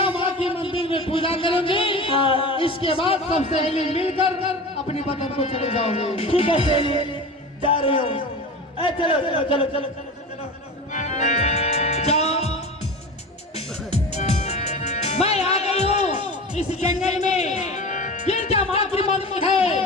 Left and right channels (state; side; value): normal; both; correlation 0.31